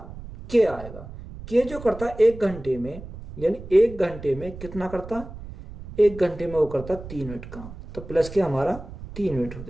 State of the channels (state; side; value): noise; right; rumble, 13 dB below the sound